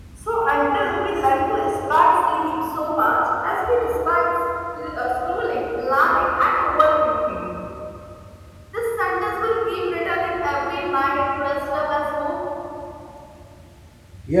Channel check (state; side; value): identical; both; correlation 1.00